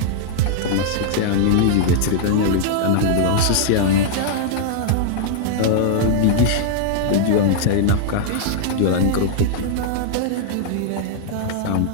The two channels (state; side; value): different; both; correlation -0.01